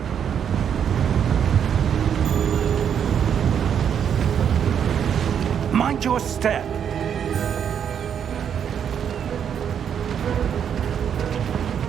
Mind your step.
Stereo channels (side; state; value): left; quieter; 8.3 dB